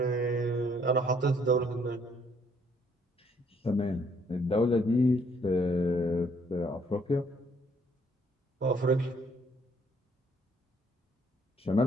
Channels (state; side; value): normal; both; correlation 0.66